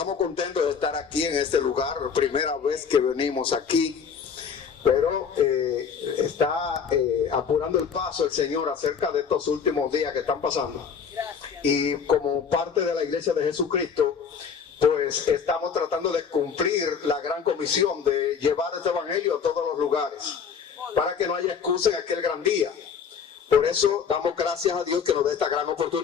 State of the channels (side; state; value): right; quieter; 6.6 dB